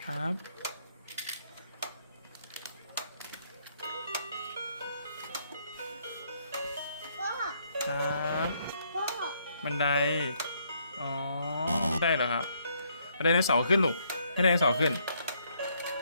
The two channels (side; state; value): both; inverted; correlation -0.71